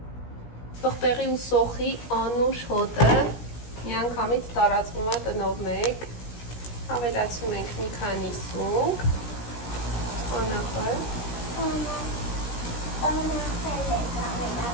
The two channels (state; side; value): late; right; 17 ms